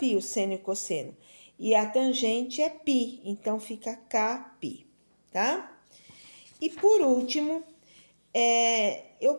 o seno e o cosseno. E a tangente é π, então fica κπ, tá? E por último, eu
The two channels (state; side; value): inverted; both; correlation -1.00